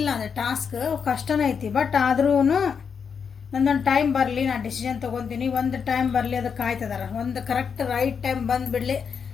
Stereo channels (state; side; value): quieter; right; 6.5 dB